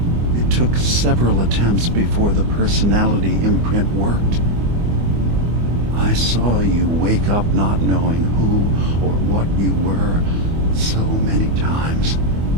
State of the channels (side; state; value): left; late; 25 ms